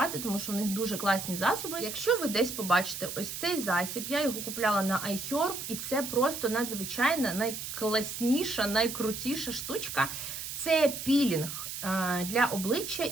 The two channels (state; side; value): noise; right; hiss, 7 dB below the sound